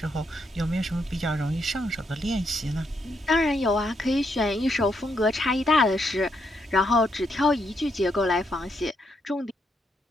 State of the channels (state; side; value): normal; both; correlation 0.78